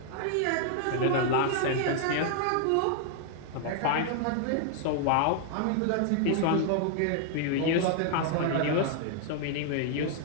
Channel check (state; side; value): different; both; correlation -0.01